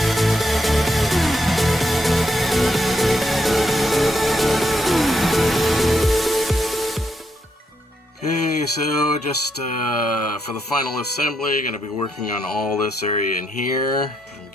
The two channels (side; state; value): both; normal; correlation 0.79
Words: Okay, so just for the final assembly, going to be working on all this area in here and